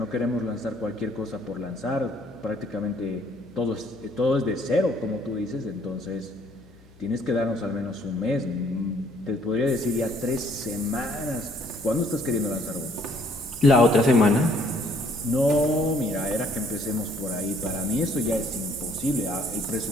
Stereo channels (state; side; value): noise; left; hum, 26 dB below the sound